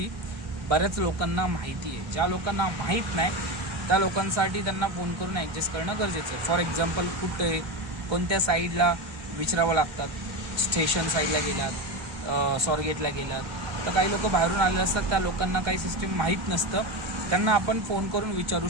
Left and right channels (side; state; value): left; late; 1.2 ms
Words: बऱ्याच लोकांना माहिती आहे. ज्या लोकांना माहीत नाही त्या लोकांसाठी त्यांना फोन करून ॲडजस्ट करणं गरजेचं आहे. फॉर एक्झाम्पल कुठे कोणत्या साईडला विचारावं लागतात, स्टेशन साईडला गेलात, स्वारगेटला गेलात, तर काही लोक बाहेरून आलेले असतात, त्या लोकांना काही सिस्टीम माहीत नसतं, त्यांना आपण फोन करून विचारू